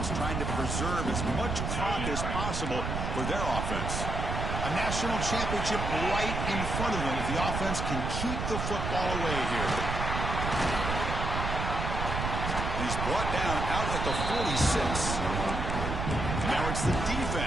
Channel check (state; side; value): noise; right; rumble, 2 dB below the sound